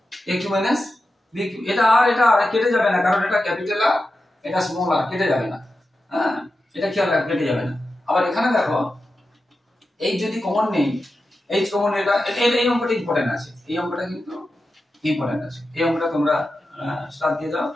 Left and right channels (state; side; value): normal; both; correlation 0.91